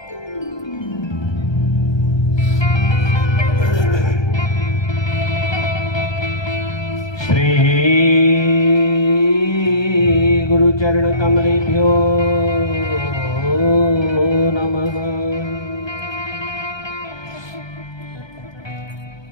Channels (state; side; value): late; right; 1.2 ms